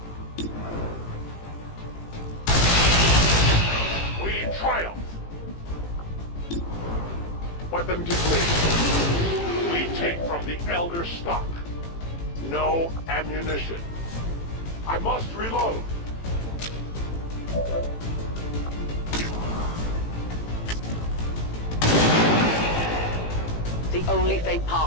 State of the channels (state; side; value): late; right; 18 ms